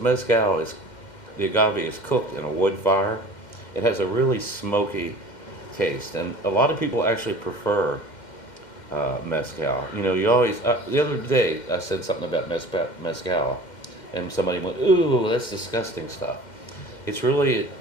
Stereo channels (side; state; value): right; late; 2.1 ms